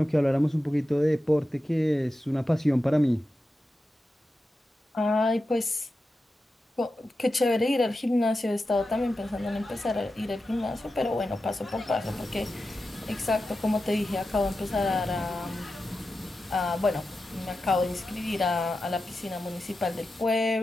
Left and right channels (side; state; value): both; normal; correlation 0.91